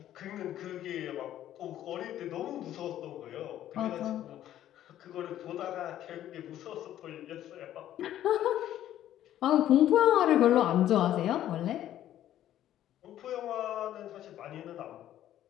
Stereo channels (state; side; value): quieter; right; 12.2 dB